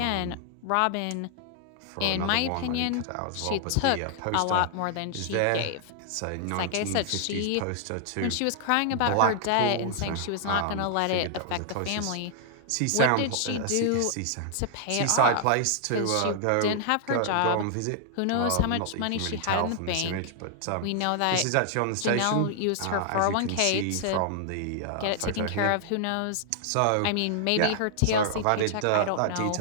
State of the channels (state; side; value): different; both; correlation -0.01